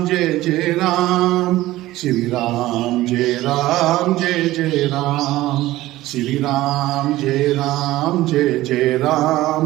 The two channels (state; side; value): quieter; left; 16.5 dB